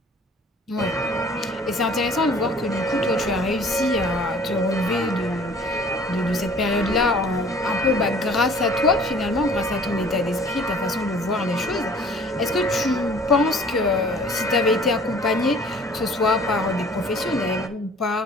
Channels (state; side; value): normal; both; correlation 0.51